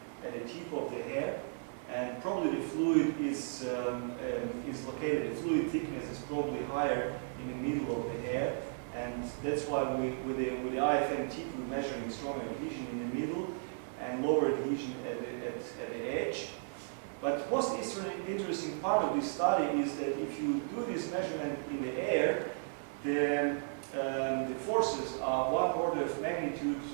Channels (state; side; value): silent; left; digital silence